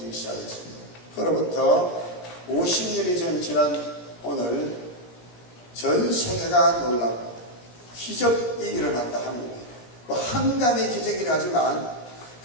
시작했습니다. 그로부터 50년이 지난 오늘 전 세계가 놀라고 기적이 일어났다. 한국에 한강의 기적이라 하지만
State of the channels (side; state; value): right; late; 17 ms